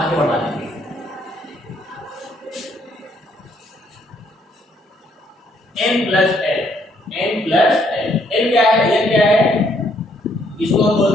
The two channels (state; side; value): normal; both; correlation 0.69